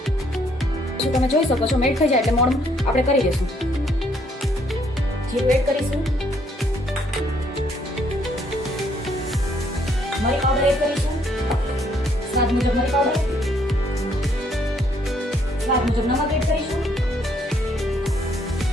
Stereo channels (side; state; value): both; normal; correlation 0.68